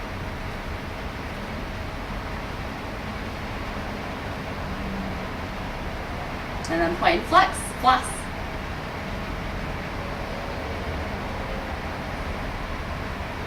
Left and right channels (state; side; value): identical; both; correlation 1.00